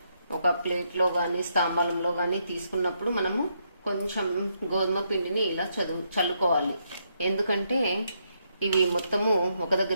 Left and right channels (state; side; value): inverted; both; correlation -0.77